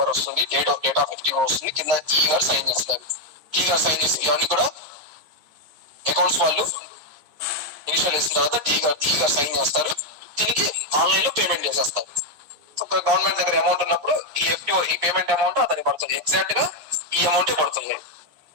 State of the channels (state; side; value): late; left; 14 ms